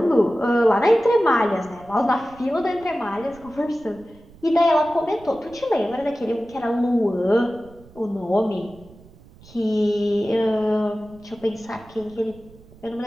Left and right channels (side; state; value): right; noise; rumble, 24 dB below the sound